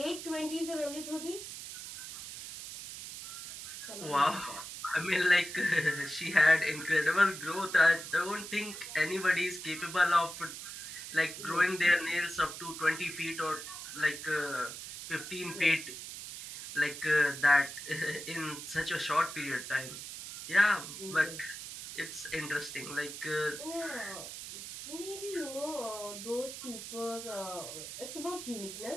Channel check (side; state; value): right; noise; hiss, 10 dB below the sound